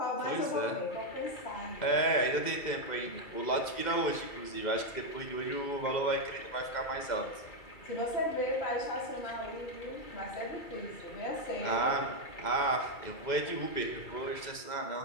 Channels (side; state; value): right; late; 2.1 ms